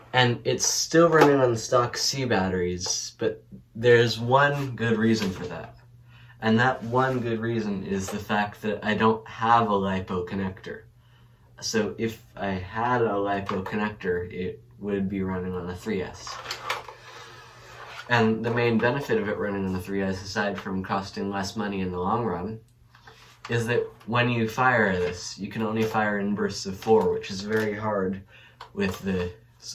And it's still running on stock C batteries, but there's one good reason for that. And that one good reason is the fact that I don't have a LiPo connector. So if I had a LiPo connector, it would be running on a 3S. And the main benefit of it running on the 3S, aside from costing less money in the long run, is that when you fire this, you can only fire in bursts of 4, which is very hard with the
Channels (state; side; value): identical; both; correlation 1.00